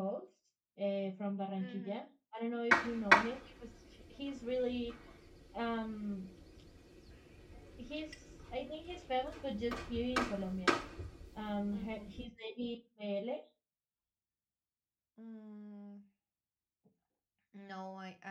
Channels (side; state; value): both; identical; correlation 1.00